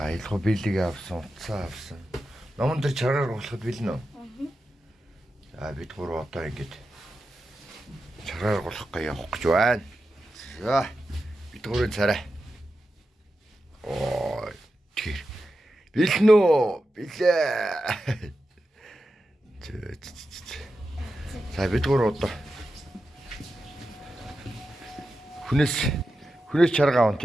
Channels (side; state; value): both; normal; correlation 0.90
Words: аялгаа бэлэг авсан, утсаа авсан. Номон дээр чаргаар гулгахад бэлэн үү? За бид гурав одоо ингээд чаргаар гулгах явах гэж байна. За бид гурвын царай. Ой тэр бэлэн үү? Билээ. За бид гурав одоо хүнээс чарга аван